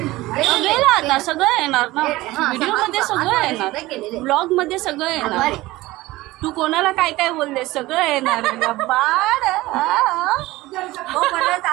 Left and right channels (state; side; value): quieter; left; 18.7 dB